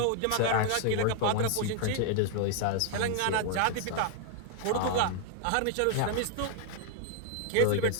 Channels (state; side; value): different; both; correlation 0.00